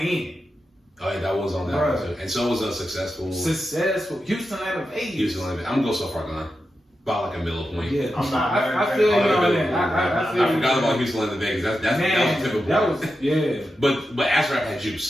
Oh yeah, that was on that Bruh. one too. And so was Successful. Successful. Houston out of 80. Houston Olympic. I'm gonna go So Far Gone. By like a middle point. Yeah, I'm not mad I at feel you that. on that. I feel I you. forgot about Houston Olympic because that was typical. that was yeah. But Acid Rap had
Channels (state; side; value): normal; both; correlation 0.89